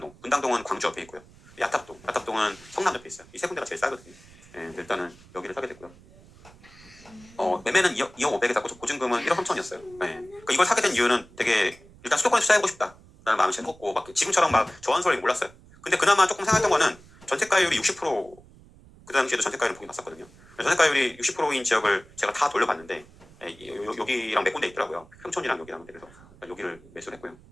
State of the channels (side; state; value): right; noise; rumble, 24 dB below the sound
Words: 광주 옆에 있고요. 야탑동은 성남 옆에 있어요. 이 세 군데가 제일 싸거든요. 일단은 여기를 사게 됐고요. 매매는 2억 500에 샀고 보증금은 1억 3천이었어요. 그러니까 이걸 사게 된 이유는 되게 일단 수도권에 투자해보고 싶다라는 마음이 제일 컸고 지금처럼 막 저한소리 몰랐어요. 근데 그나마 조금 생각했던 거는 전세가율이 60% 그 당시에도 전세가율은 보긴 봤었거든요. 전세가율이 60%인 지역을 제가 다 돌려봤는데 여기랑 몇 군데 있더라고요. 평촌이랑 여기랑. 그래서 여기를 매수를 했고요.